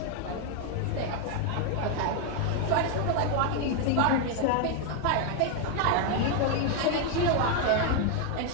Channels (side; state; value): both; different; correlation 0.01